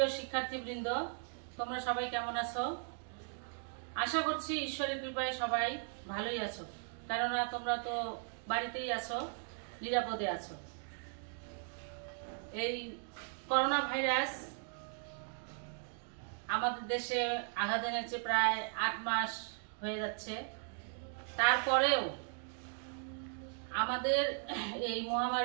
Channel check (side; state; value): left; silent; 53 dB below the other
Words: শিক্ষার্থীবৃন্দ, তোমরা সবাই কেমন আছো? আশা করছি ঈশ্বরের কৃপায় সবাই ভালোই আছো, কেননা তোমরা তো বাড়িতেই আছো, নিরাপদে আছো। এই করোনা ভাইরাস আমাদের দেশে আঘাত এনেছে, প্রায় 8 মাস হয়ে যাচ্ছে। তারপরেও আমাদের এই